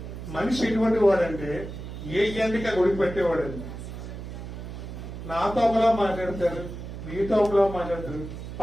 మనిషి ఎటువంటి వాడంటే ఏ ఎండిక గుడి పెట్టేవాడండి. నాతో ఒకలా మాట్లాడతారు, మీతో ఒకలా మాట్లాడతారు,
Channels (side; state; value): right; noise; hum, 9 dB below the sound